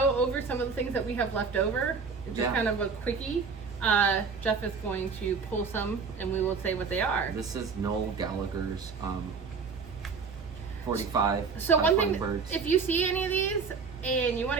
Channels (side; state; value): left; quieter; 5.3 dB